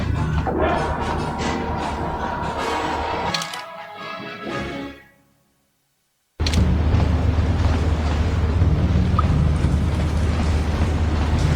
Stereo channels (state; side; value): identical; both; correlation 1.00